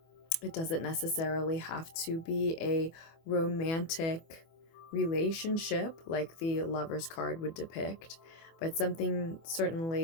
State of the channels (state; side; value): late; right; 24 ms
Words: It doesn't necessarily have to be a romantic relationship like the Lover's card would depict, but something